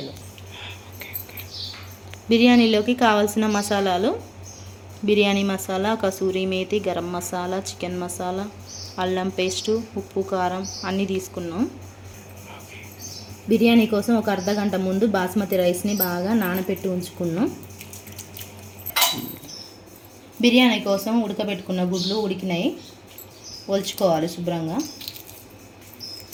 బిర్యానీలోకి కావాల్సిన మసాలాలు: బిర్యానీ మసాలా, కసూరి మేతి, గరం మసాలా, చికెన్ మసాలా, అల్లం పేస్టు, ఉప్పు, కారం అన్నీ తీసుకున్నాం. బిర్యానీ కోసం ఒక అర్ధగంట ముందు బాస్మతి రైస్ని బాగా నానబెట్టి ఉంచుకున్నాం. బిర్యానీ కోసం ఉడకబెట్టుకున్న గుడ్లు ఉడికినాయి, ఒలుచుకోవాలి శుభ్రంగా.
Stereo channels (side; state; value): both; identical; correlation 1.00